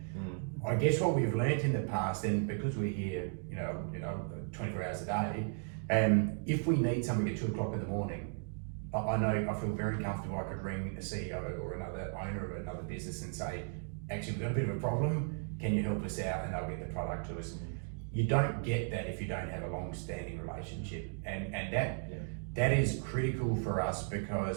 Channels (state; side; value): silent; left; 54 dB below the other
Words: I guess what we've learnt in the past, and because we're here, 24 hours a day, if we need something at 2 o'clock in the morning, I feel very comfortable. I could ring a CEO or another owner of another business and say, actually, we've got a bit of a problem, can you help us out? And they'll get the product to us. You don't get that if you don't have a long-standing relationship, and that is critical for us,